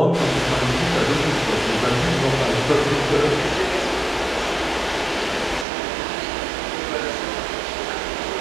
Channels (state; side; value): drops out; left; at 5.7 s